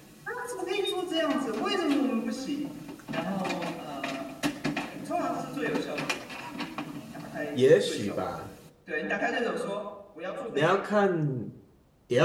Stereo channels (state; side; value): identical; both; correlation 1.00